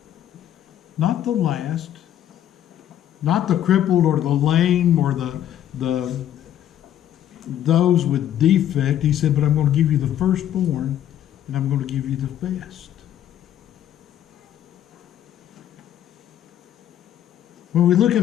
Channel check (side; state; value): right; quieter; 11.0 dB